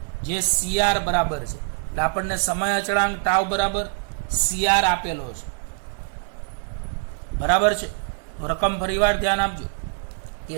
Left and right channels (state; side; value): silent; left; 63 dB below the other